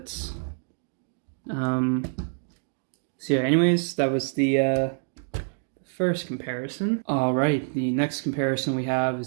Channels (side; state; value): left; silent; digital silence